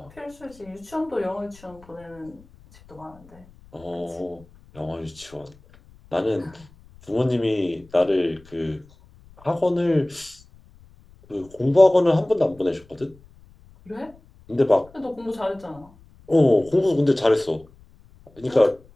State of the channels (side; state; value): left; noise; rumble, 26 dB below the sound